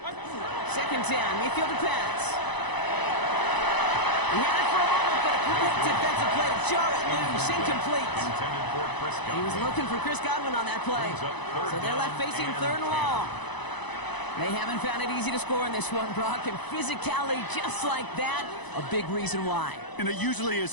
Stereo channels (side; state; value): right; late; 1.0 ms